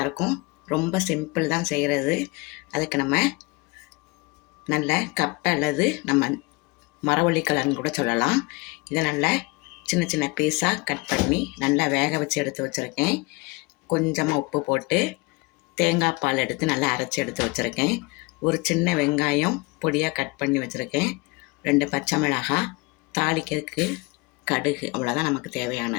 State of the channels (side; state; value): right; quieter; 25.5 dB